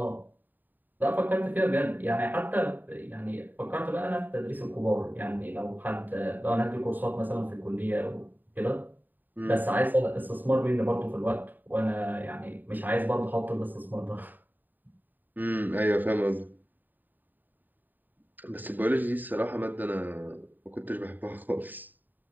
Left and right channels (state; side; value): late; left; 0.089 ms